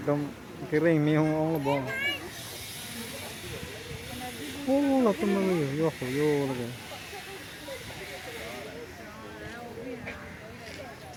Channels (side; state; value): both; identical; correlation 1.00